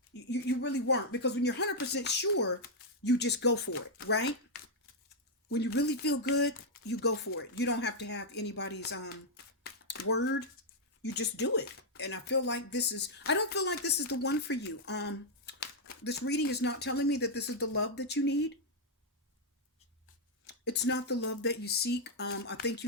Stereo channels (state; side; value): normal; both; correlation -0.03